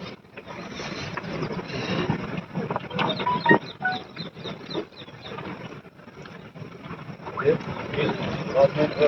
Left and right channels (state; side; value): identical; both; correlation 1.00